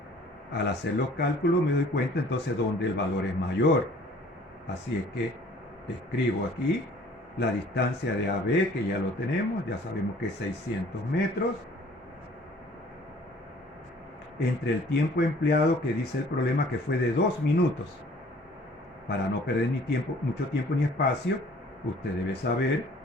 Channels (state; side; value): normal; both; correlation 0.54